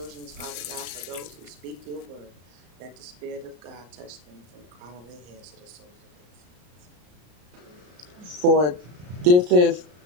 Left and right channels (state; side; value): late; left; 34 ms